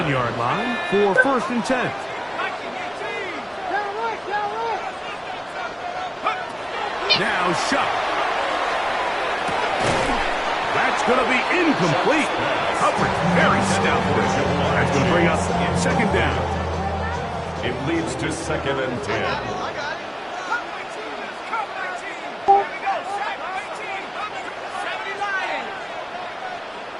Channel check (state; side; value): identical; both; correlation 1.00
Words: line for 1st and 10. Now Shuck. That's going to be incomplete. Coverage very stout. That's going to bring up 2nd down. It leads to 2nd and 10.